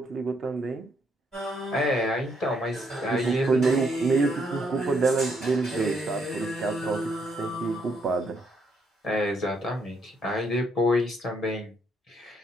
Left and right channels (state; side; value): normal; both; correlation 0.73